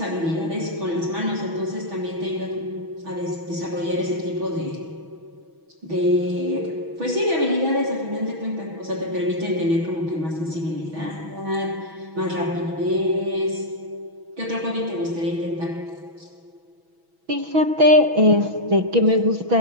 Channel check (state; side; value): late; left; 6.2 ms